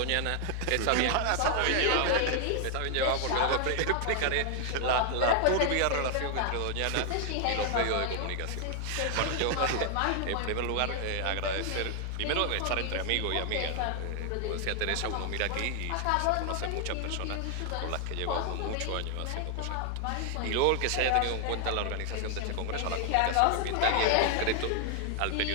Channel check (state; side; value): different; both; correlation 0.00